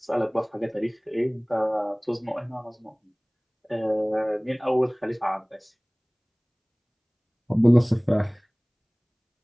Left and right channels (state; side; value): identical; both; correlation 1.00